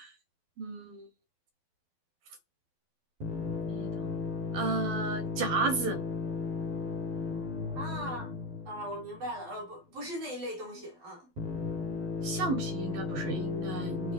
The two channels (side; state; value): left; late; 12 ms